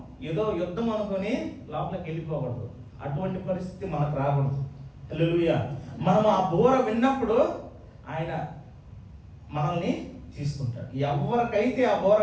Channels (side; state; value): both; identical; correlation 1.00